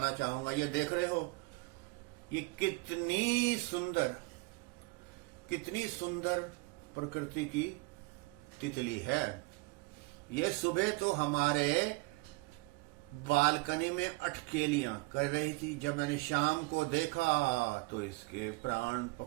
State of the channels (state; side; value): quieter; left; 24.7 dB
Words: चाहूंगा। ये देख रहे हो, ये कितनी सुंदर प्रकृति की तितली है। ये सुबह तो हमारे बालकनी में अटकेलियां कर रही थी। जब मैंने शाम को देखा तो इसके प्राण